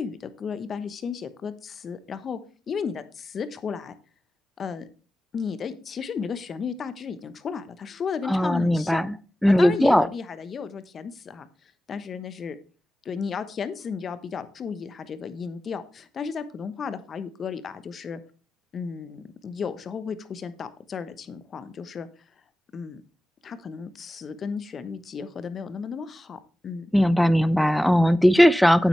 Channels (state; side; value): normal; both; correlation 0.94